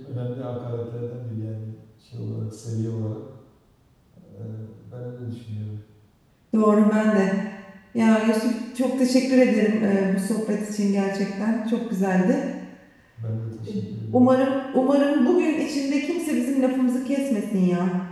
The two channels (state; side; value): identical; both; correlation 1.00